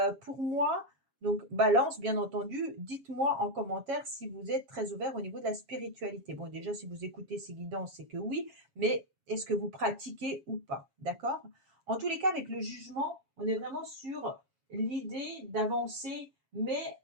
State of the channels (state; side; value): late; left; 7.2 ms